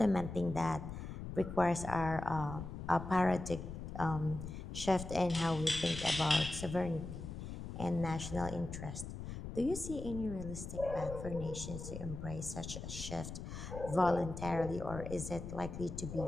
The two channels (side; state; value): left; noise; rumble, 8 dB below the sound